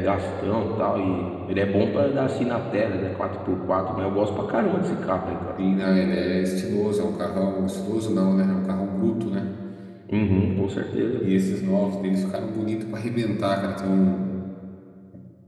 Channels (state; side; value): identical; both; correlation 1.00